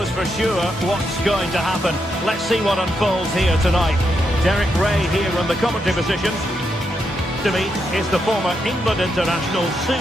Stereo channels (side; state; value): both; normal; correlation 0.82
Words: for sure what's going to happen. Let's see what unfolds here tonight. Derek Ray here in the commentary position. To me is the former England international Sue